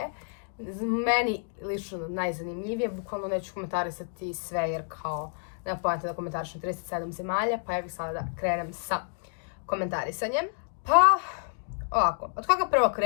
Meni lično najzanimljivije, bukvalno neću komentarisati sve jer kao nema pojenta da komentarišem 37 zemalja, pa ja bih sada da krenem sa komentarisanjem. Pa, ovako, od koga prvo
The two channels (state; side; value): silent; right; 58 dB below the other